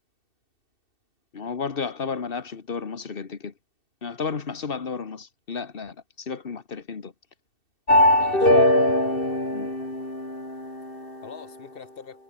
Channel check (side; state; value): right; late; 2.7 ms